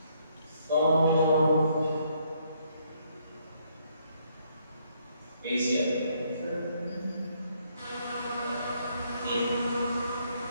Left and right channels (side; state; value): both; inverted; correlation -0.70